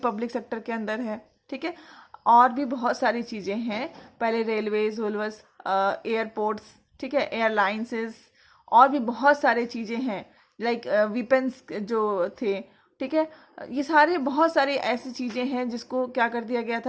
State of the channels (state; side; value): identical; both; correlation 1.00